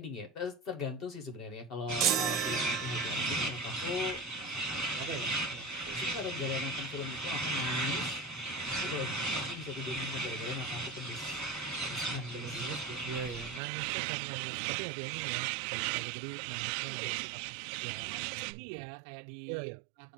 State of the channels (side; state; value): left; drops out; at 13.6 s